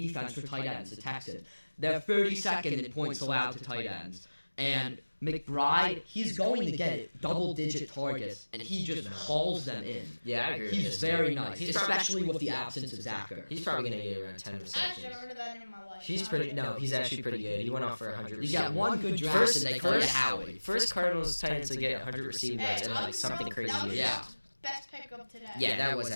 defense for tight ends, the Texans. They're 32nd in points allowed to tight ends. And McBride, he's going to get double-digit targets, and he just hauls them in. Yeah, I agree with He's this. very nice, He's especially with the absence of Zachary. He's probably going to get around 10 I actually never receptions. heard that in my life. He's actually pretty good. He went off for 100 He got one good draft, First- and they called it first- Howie. First Cardinals Titans to get 100 receiving Hey, yards and like something crazy. that was Yeah. his best pick of today. Yeah, that was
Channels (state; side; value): inverted; both; correlation -1.00